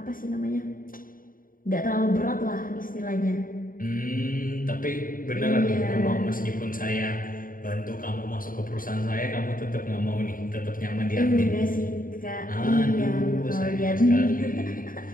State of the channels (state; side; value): late; right; 0.40 ms